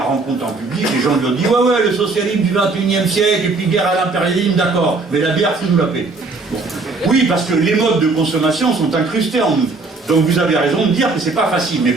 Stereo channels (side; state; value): left; quieter; 3.7 dB